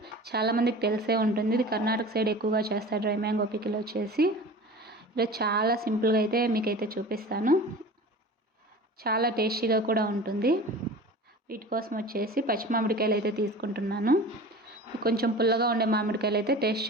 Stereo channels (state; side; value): normal; both; correlation 0.37